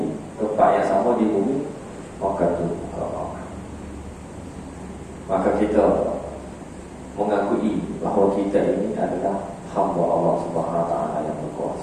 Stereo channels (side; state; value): both; identical; correlation 1.00